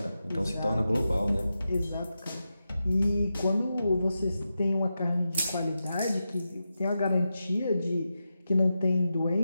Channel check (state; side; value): inverted; both; correlation -0.90